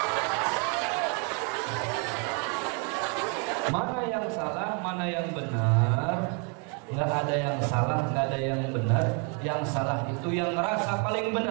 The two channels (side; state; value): left; quieter; 35.9 dB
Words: Mana yang salah, mana yang benar? Nggak ada yang salah, nggak ada yang benar. Yang salah itu yang ngerasa paling